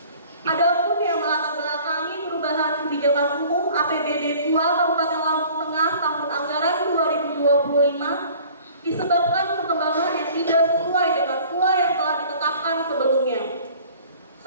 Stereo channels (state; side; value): inverted; both; correlation -0.49